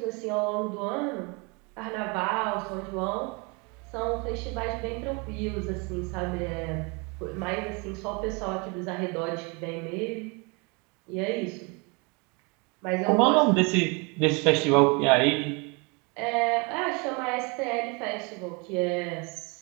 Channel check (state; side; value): quieter; left; 30.6 dB